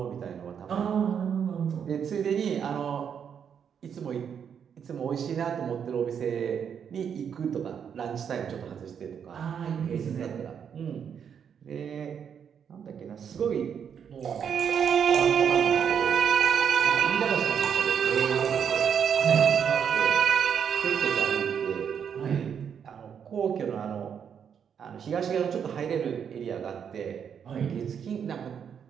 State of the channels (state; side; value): quieter; left; 7.7 dB